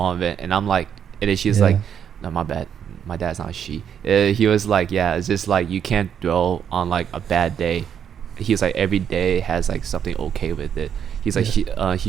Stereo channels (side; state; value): left; quieter; 8.4 dB